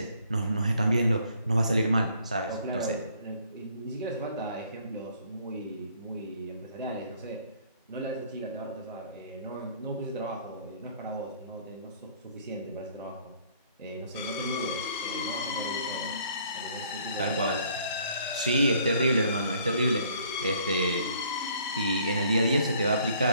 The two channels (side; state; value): both; inverted; correlation -0.61